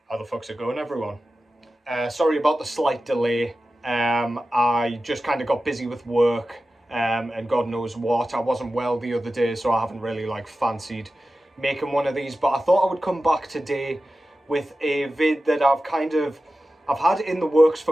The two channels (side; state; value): both; normal; correlation 0.94